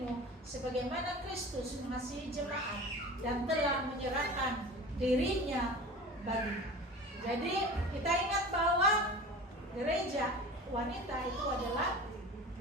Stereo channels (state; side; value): normal; both; correlation 0.36